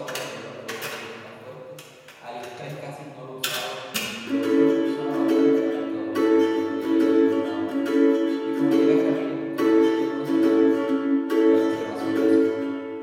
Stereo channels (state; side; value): identical; both; correlation 1.00